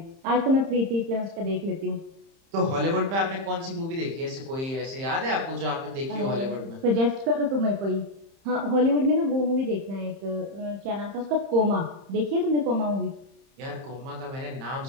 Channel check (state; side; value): late; left; 30 ms